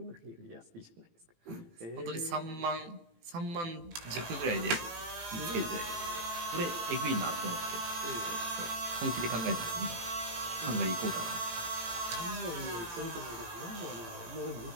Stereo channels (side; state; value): left; late; 18 ms